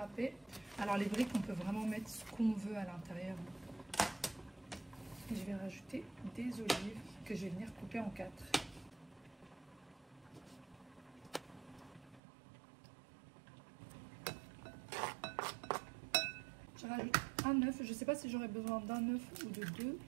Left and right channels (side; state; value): left; drops out; at 12.2 s